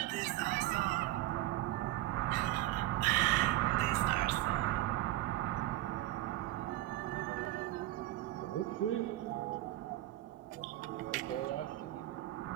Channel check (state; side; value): quieter; left; 16.2 dB